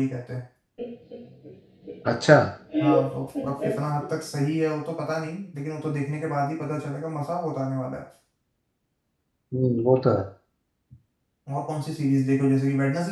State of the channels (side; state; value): both; identical; correlation 1.00